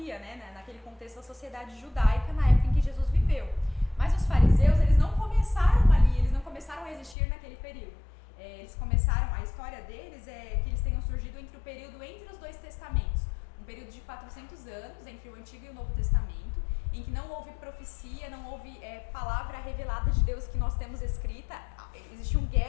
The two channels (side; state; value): right; drops out; at 7.2 s